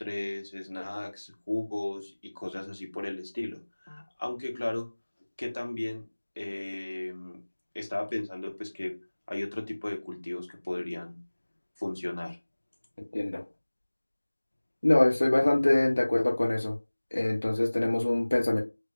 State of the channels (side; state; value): both; inverted; correlation -1.00